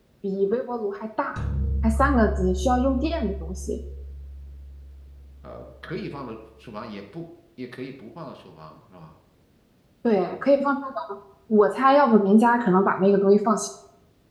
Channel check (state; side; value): identical; both; correlation 1.00